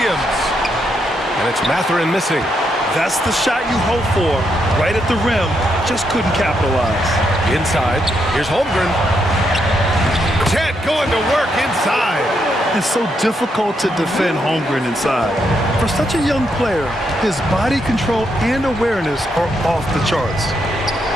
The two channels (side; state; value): both; normal; correlation 0.79